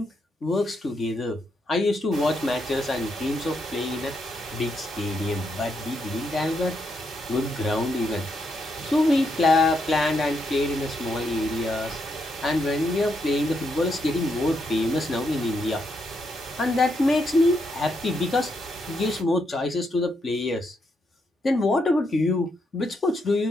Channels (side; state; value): both; normal; correlation 0.79